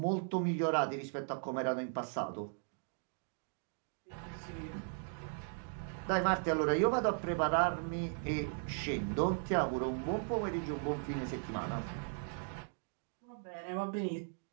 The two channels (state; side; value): silent; left; 53 dB below the other